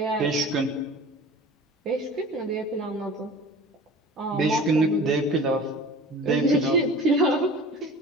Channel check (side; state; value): both; normal; correlation 0.40